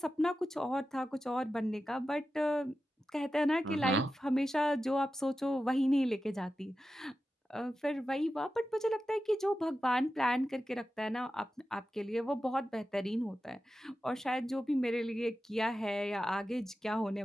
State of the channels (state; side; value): normal; both; correlation 0.92